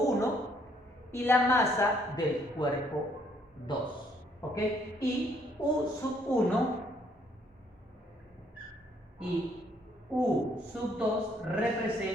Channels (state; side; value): normal; both; correlation 0.67